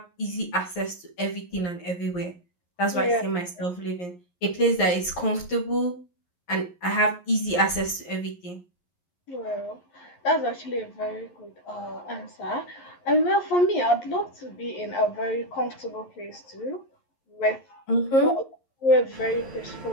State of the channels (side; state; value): right; late; 11 ms